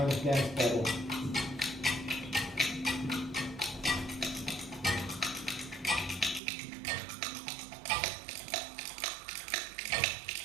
of dance battle.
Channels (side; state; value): left; drops out; at 6.4 s